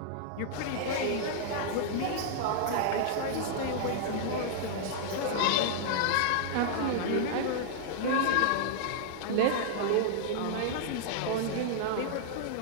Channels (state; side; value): different; both; correlation -0.01